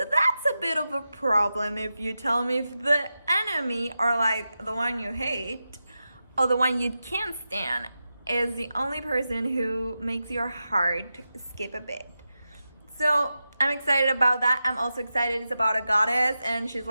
that's a bit of a problem if you tell me if the enemy, or like the one you hate, or the one you can't stand, is the only person who makes your heart skip a bit. So I'm excited about that. I'm also excited it's about a goddess, and she's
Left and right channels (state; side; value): inverted; both; correlation -0.91